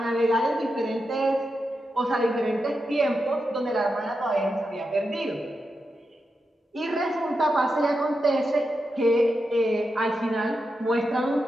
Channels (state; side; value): normal; both; correlation 0.88